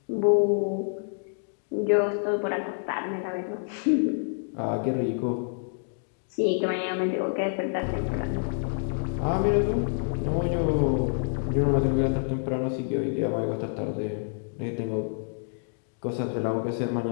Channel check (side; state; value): right; silent; digital silence